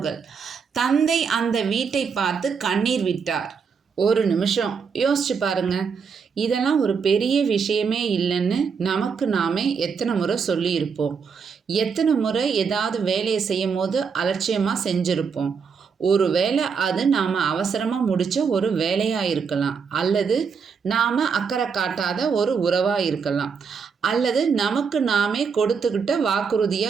தந்தை அந்த வீட்டை பார்த்து கண்ணீர் விட்டார். ஒரு நிமிஷம் யோசிச்சு பாருங்க. இதெல்லாம் ஒரு பெரிய விஷயமே இல்லைன்னு நமக்கு நாமே எத்தனை முறை சொல்லியிருப்போம். எத்தனை முறை ஏதாவது வேலையை செய்யும் போது அலட்சியமாக செஞ்சுருப்போம். ஒரு வேளை அது நாம் அவசரமாக முடித்த ஒரு வேலையாக இருக்கலாம், அல்லது நாம் அக்கறை காட்டாத ஒரு உறவாக இருக்கலாம், அல்லது நமக்கு நாமே கொடுத்துக்கிட்ட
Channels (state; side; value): quieter; left; 5.9 dB